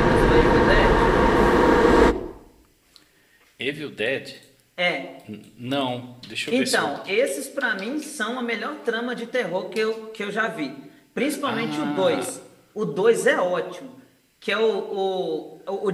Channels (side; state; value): both; identical; correlation 1.00